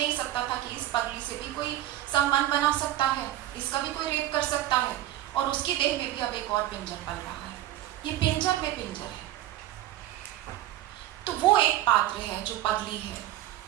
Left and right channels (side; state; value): left; quieter; 13.9 dB